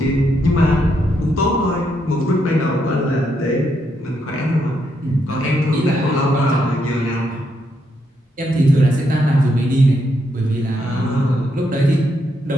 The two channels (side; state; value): both; normal; correlation 0.78